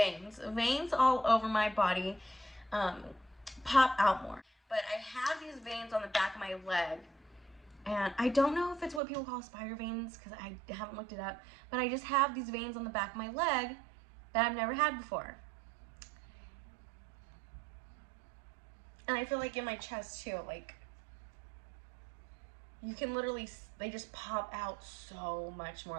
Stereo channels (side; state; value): left; drops out; at 9.0 s